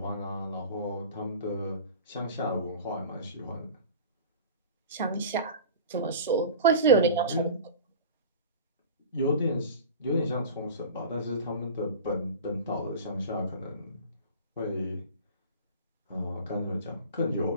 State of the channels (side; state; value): both; inverted; correlation -0.35